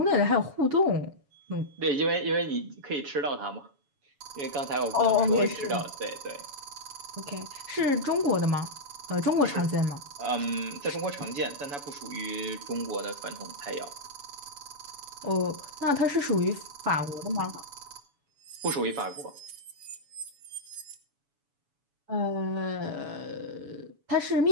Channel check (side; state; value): left; late; 7.1 ms